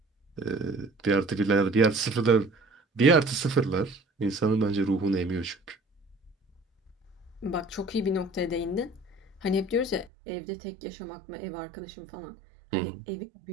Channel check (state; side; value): drops out; left; at 10.1 s